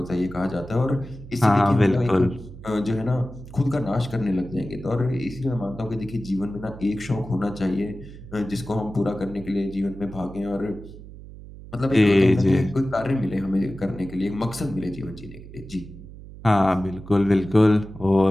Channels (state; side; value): noise; right; hum, 16 dB below the sound